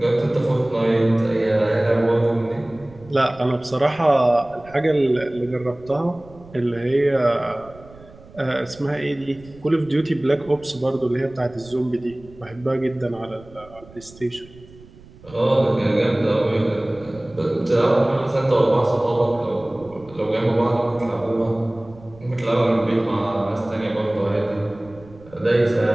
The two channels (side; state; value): right; noise; rumble, 22 dB below the sound